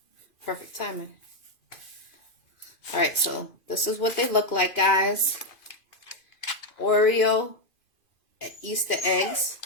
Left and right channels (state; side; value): late; right; 2.5 ms